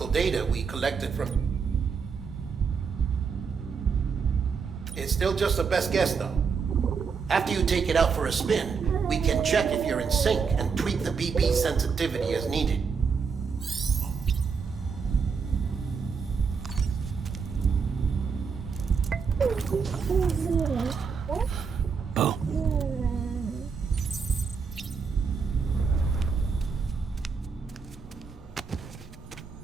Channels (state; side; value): quieter; left; 5.7 dB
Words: data we collected from... It's still just a best guess, though. After you take it out for a spin, we can check if you're in sync and tweak the BB sensitivity as needed. Boom.